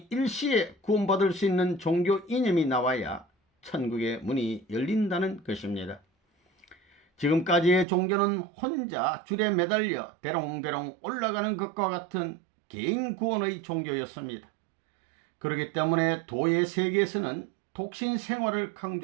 일시에 구원받을 수 있는 종교 이념이 나와야 천국의 문이 열린다는 것입니다. 지금까지의 종교는 혼자 줄에 매달려 대롱대롱 올라가는 것과 같은 개인 구원의 종교였습니다. 그렇기 때문에 도의 세계에서는 독신 생활을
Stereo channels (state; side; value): drops out; left; at 7.9 s